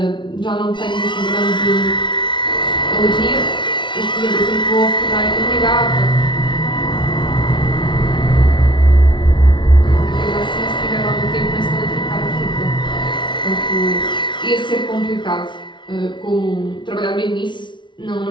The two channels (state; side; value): late; right; 0.23 ms